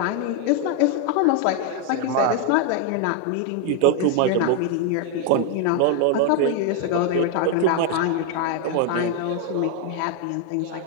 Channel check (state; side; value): different; both; correlation 0.01